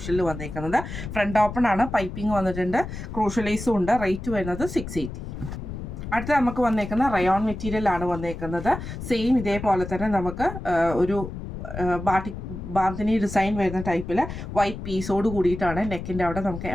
വന്നേക്കുന്നത്. ഫ്രണ്ട് ഓപ്പൺ ആണ്, പൈപ്പിംഗ് വന്നിട്ടുണ്ട്, ക്രൂഷ്യൽ ലേസും ഉണ്ട്. റേറ്റ് വരുന്നത് 680. അടുത്ത നമുക്ക് വന്നേക്കുന്ന റയോൺ മെറ്റീരിയൽ ആണ് വന്നേക്കുന്നത്. സെയിം ഇതേപോലെ തന്നെ നമുക്ക് ഒരു ബാന്തിനി ഡിസൈൻ വരുന്ന ടൈപ്പിൽ വൈറ്റ് പീസോട് കൂടിയിട്ടാണ്. നെക്കിൻ്റെ അവിടെ നമുക്ക്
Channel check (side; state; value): left; noise; rumble, 8 dB below the sound